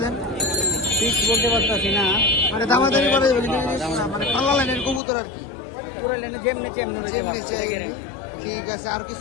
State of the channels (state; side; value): drops out; right; at 5.0 s